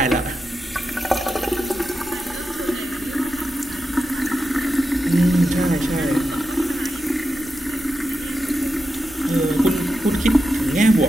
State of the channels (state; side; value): noise; right; rumble, 22 dB below the sound